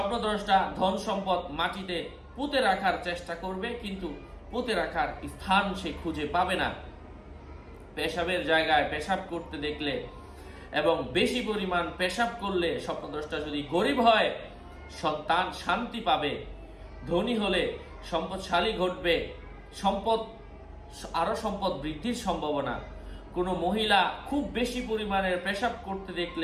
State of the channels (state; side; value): identical; both; correlation 1.00